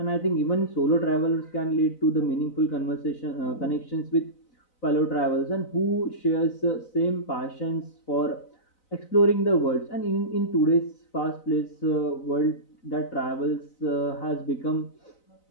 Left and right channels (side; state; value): right; late; 4.0 ms